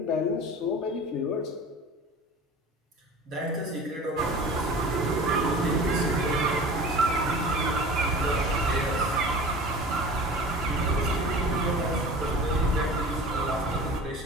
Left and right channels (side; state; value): both; normal; correlation 0.39